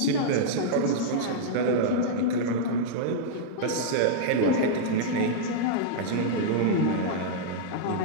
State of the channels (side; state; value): both; different; correlation -0.02